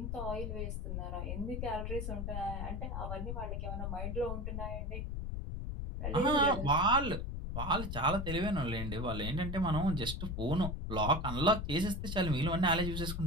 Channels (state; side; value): noise; left; rumble, 3 dB below the sound